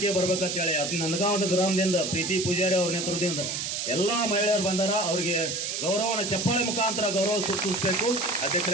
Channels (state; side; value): noise; right; hiss, 3 dB below the sound